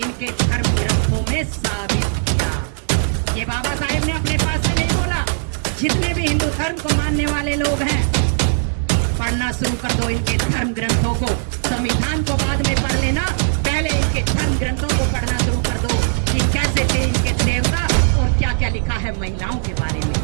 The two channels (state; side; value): silent; left; 66 dB below the other